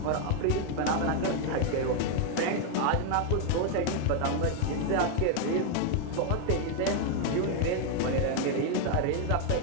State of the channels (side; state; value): both; different; correlation 0.01